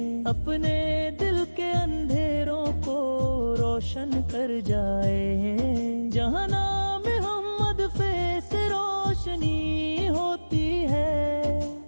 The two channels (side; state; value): both; inverted; correlation -1.00